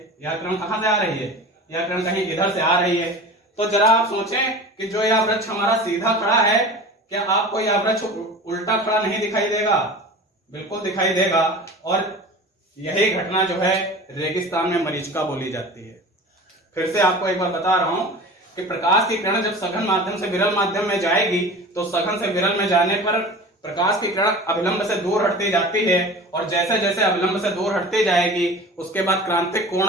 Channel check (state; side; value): normal; both; correlation 0.37